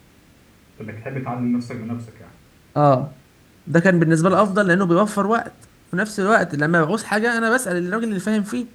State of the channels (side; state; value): both; identical; correlation 1.00